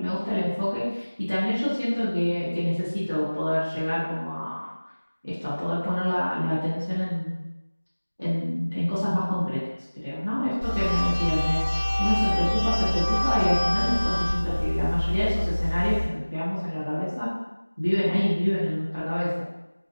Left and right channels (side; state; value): both; inverted; correlation -1.00